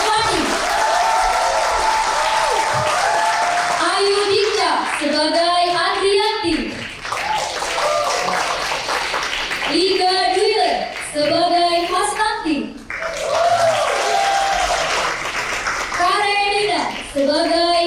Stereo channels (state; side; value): identical; both; correlation 1.00